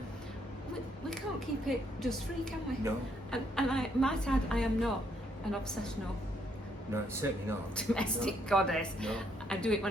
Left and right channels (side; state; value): both; normal; correlation 0.72